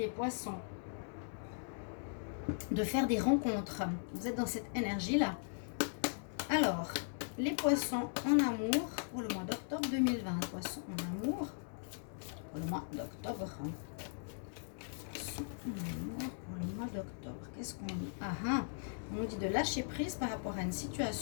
poissons. De faire des rencontres. Vous êtes dans cette énergie-là. Alors, les poissons en amour pour le mois d'octobre 2020. Poissons en amour pour le mois d'octobre. Poissons en amour pour le mois d'octobre. Qu'est-ce qu'on dit? On nous dit de lâcher prise par rapport à une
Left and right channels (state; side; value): silent; right; digital silence